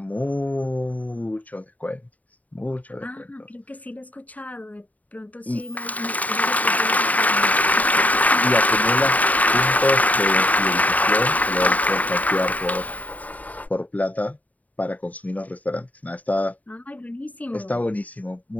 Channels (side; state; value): right; late; 0.073 ms